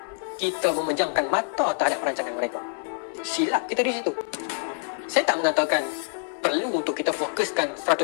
Kita memejamkan mata terhadap perancangan mereka. Silap kita di situ. Saya tak mengatakan perlu untuk kita fokuskan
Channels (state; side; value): silent; right; 61 dB below the other